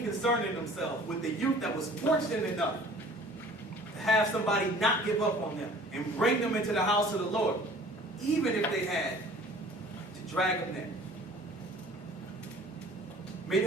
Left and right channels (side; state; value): both; normal; correlation 0.49